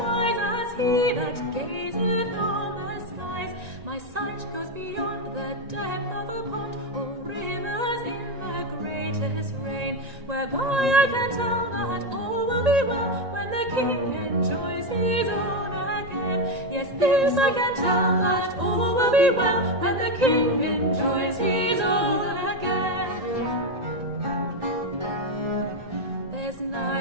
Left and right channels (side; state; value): left; late; 1.9 ms